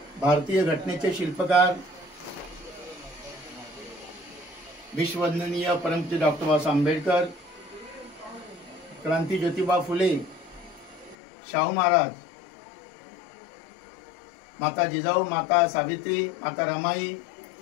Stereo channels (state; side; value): drops out; right; at 11.2 s